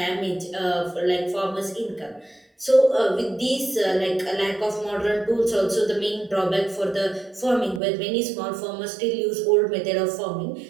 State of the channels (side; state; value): left; drops out; at 7.8 s